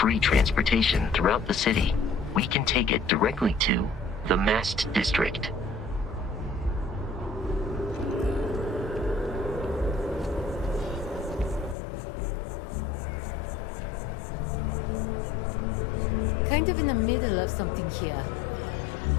transportation throughout the city. We can take it directly to the Mast District. Kind of in the middle of something here.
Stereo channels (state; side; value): drops out; right; at 11.8 s